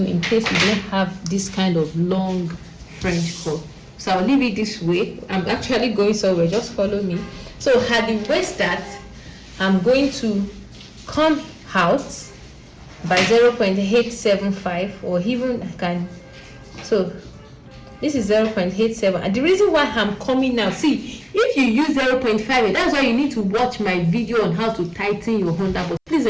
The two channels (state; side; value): identical; both; correlation 1.00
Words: in case you don't have this kind of long French curve. So I'll leave it this way. I'm actually going somewhere. Just follow me. So at the waist dart, I'm going to come out by 0.875, or even I can. So this is 0.87, and the reason why I'm coming now, see, if you use 0.5, that's why you need to watch my video on how to tighten your underbust. Please